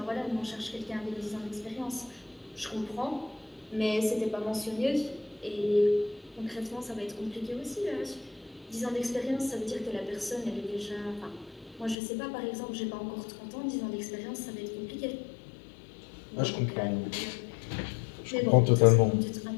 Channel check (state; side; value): drops out; right; at 12.0 s